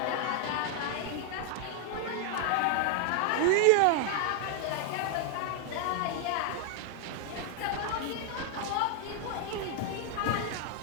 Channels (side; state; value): both; different; correlation 0.00